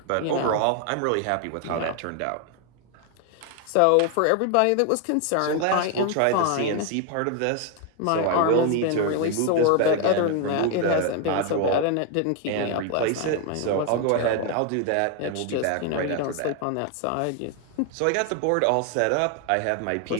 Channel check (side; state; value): both; different; correlation 0.01